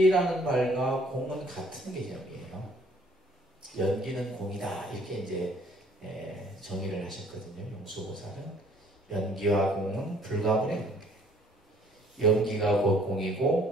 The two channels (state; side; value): normal; both; correlation 0.59